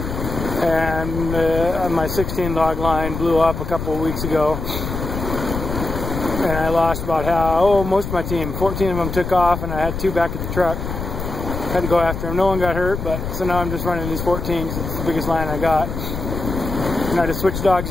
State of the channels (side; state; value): left; noise; rumble, 5 dB below the sound